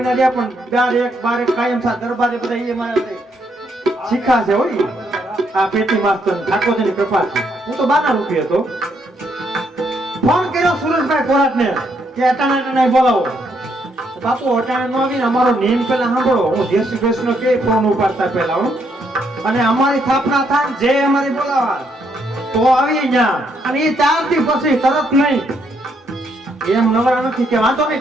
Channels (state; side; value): normal; both; correlation 0.74